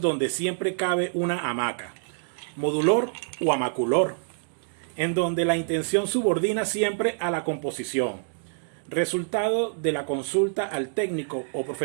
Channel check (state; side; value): silent; left; digital silence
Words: donde siempre cabe una hamaca, modulor o hamaculor, en donde la intención subordina siempre a la composición, resultado de la consulta al técnico o